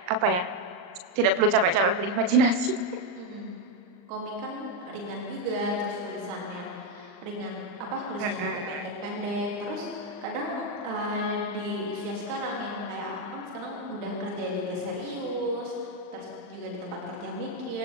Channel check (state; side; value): late; left; 39 ms